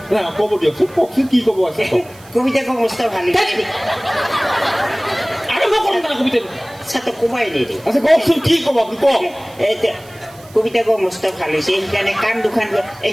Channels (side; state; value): right; noise; hiss, 24 dB below the sound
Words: কব দিয়কচোন, কওকচোন কি কব আছে। কবিতা কব মস্ত ভাল হৈছে আৰম্ভ কৰক না কবিতাটো। তো কমাই নিদি। আচ্ছা কওকচোন কি কব আপুনি কওক। কবিতা কব মস্ত ভাল হৈছে সেইকাৰণে কাণ দুখান